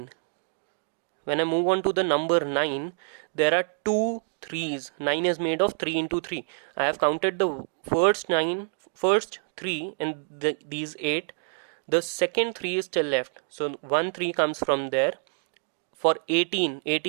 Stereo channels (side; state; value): left; silent; digital silence